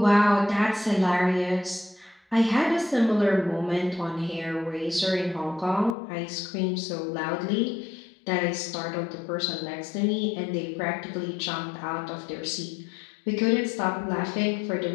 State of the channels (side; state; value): right; drops out; at 6.0 s